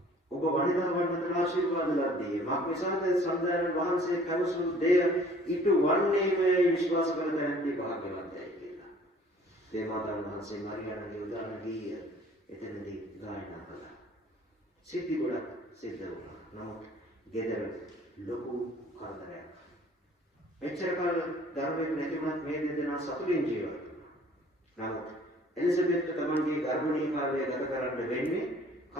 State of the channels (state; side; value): normal; both; correlation 0.53